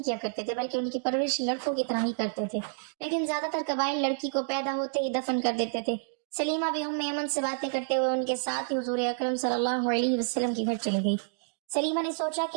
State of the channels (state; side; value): silent; left; digital silence